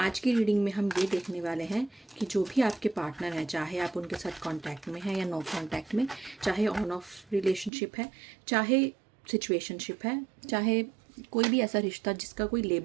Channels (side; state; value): left; drops out; at 7.7 s